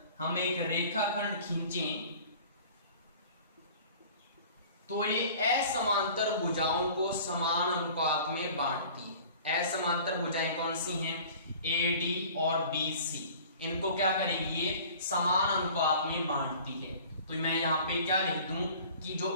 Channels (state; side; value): inverted; both; correlation -0.46